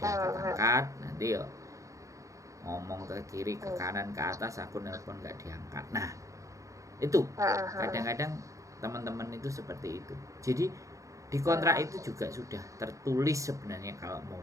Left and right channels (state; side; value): late; left; 0.15 ms